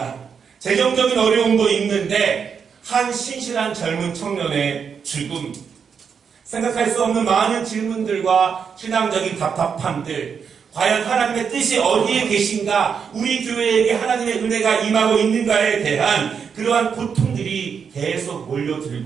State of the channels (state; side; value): quieter; left; 6.6 dB